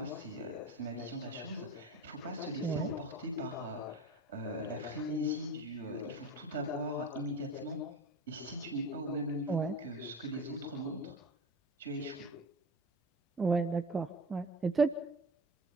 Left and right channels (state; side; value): normal; both; correlation 0.33